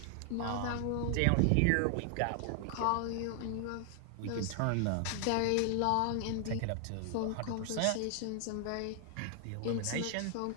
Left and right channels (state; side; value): different; both; correlation 0.00